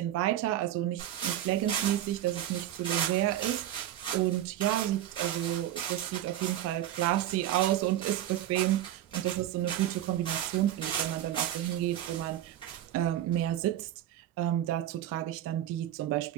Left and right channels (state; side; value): quieter; left; 12.4 dB